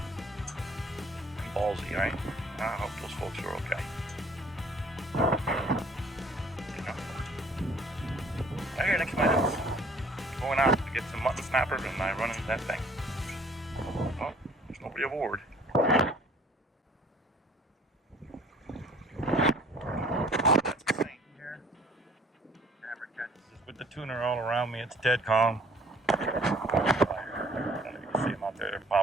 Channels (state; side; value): normal; both; correlation 0.55